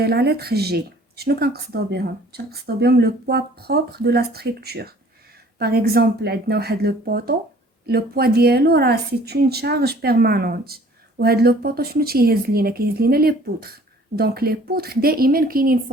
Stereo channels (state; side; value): normal; both; correlation 0.53